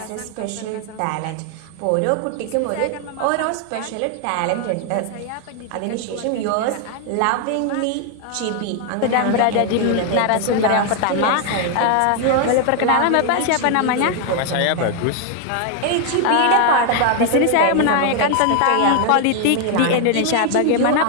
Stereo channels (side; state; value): both; different; correlation 0.00